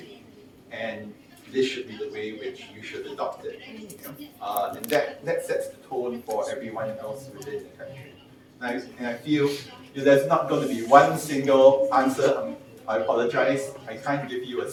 and this should be the way which you should adopt it. And that sets the tone for everyone else within the country. And I feel there's not going to be one single answer. I apologize, I can't give you a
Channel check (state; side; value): identical; both; correlation 1.00